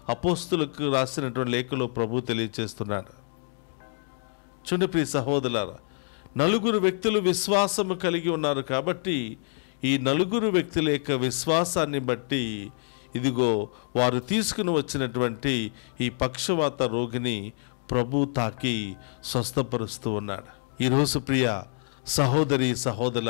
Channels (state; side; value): silent; right; 60 dB below the other